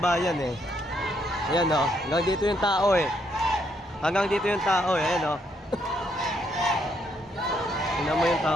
eh. Ayan o. Hanggang dito yung tao eh. Hanggang dito yung tao eh. Ayan o. Tingnan mo yung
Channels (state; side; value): normal; both; correlation 0.74